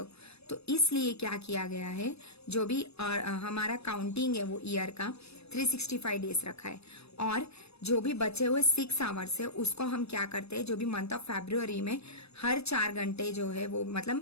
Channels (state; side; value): late; right; 0.79 ms